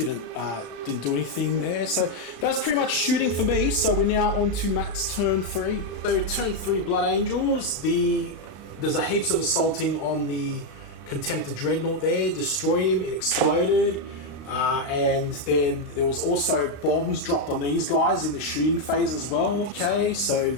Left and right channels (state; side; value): late; right; 35 ms